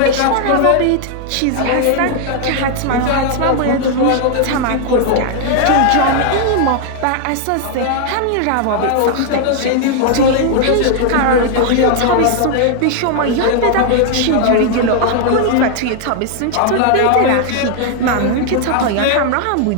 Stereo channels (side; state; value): both; different; correlation 0.00